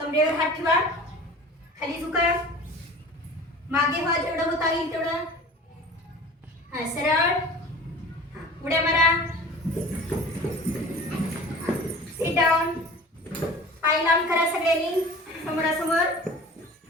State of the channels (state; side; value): normal; both; correlation 0.41